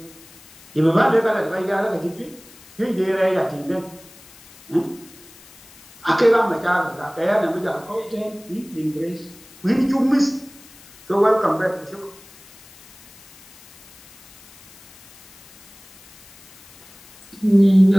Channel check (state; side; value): noise; left; hiss, 23 dB below the sound